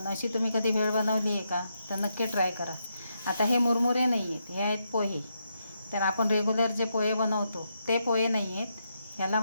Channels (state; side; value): inverted; both; correlation -0.81